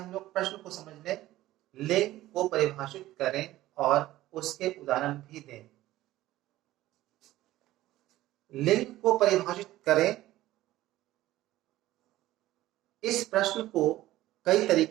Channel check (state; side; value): quieter; left; 15.7 dB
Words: लोग प्रश्न को समझ लें। लिंग को परिभाषित करें और उसके उदाहरण भी दें। लिंग को परिभाषित करें, इस प्रश्न को कई